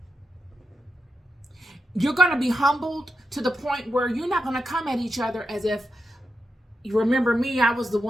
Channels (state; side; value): normal; both; correlation 0.86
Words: You're going to be humbled to the point where you're not going to come at each other as if, you remember me, I was the